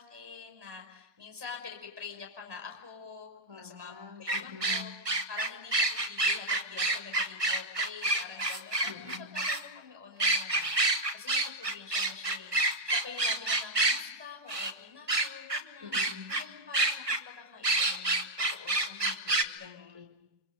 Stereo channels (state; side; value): late; left; 1.5 ms